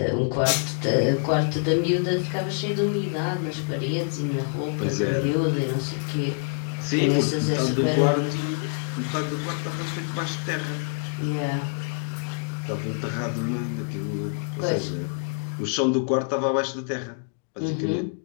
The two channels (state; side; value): silent; right; 61 dB below the other